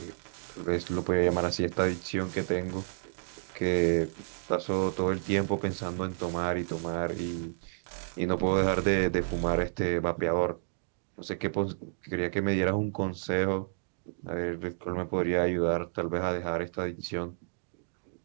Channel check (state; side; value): silent; left; digital silence